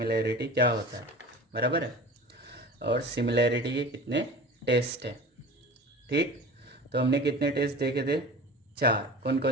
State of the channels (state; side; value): normal; both; correlation 0.37